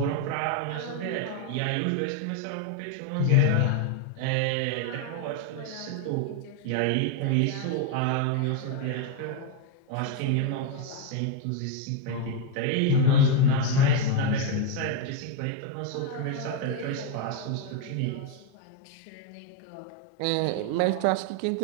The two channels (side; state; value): both; different; correlation 0.01